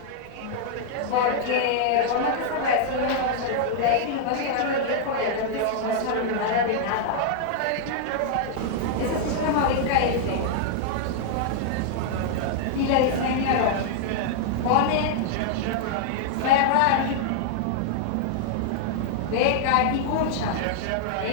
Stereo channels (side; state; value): both; different; correlation -0.01